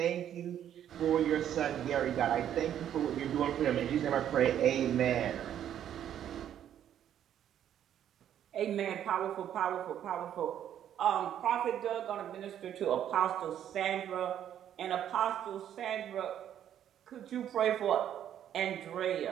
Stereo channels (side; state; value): left; quieter; 10.3 dB